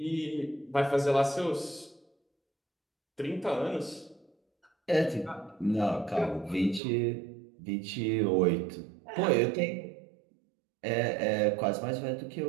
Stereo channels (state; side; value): drops out; left; at 6.8 s